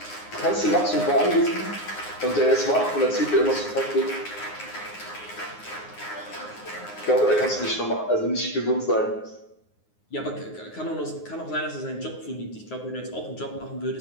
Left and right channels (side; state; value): right; late; 9.6 ms